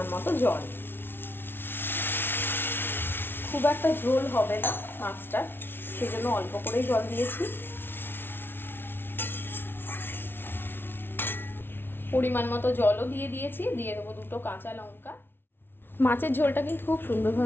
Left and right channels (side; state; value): right; late; 0.11 ms